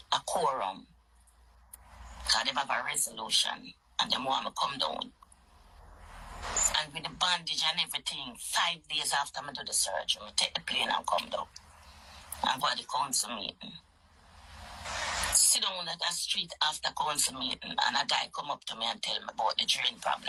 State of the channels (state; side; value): identical; both; correlation 1.00